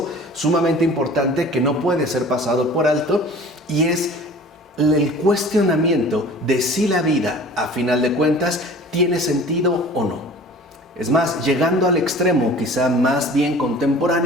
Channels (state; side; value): normal; both; correlation 0.44